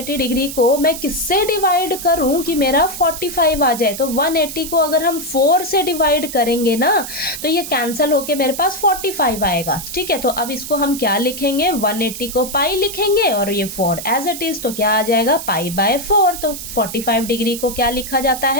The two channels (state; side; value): noise; right; hiss, 9 dB below the sound